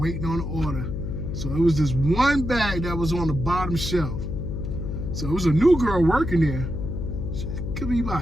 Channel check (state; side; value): noise; left; hum, 4 dB below the sound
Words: on an order. So it was this one bag that was on the bottom shelf. So it was a new girl working there. She could be